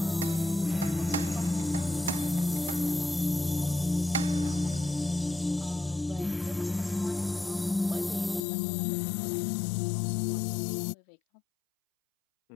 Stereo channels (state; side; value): drops out; right; at 8.5 s